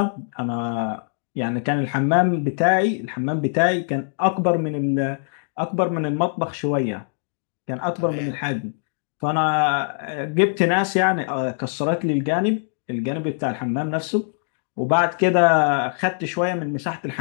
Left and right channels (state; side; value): silent; right; digital silence